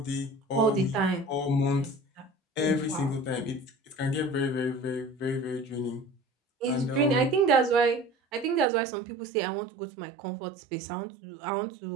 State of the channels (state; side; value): drops out; left; at 8.7 s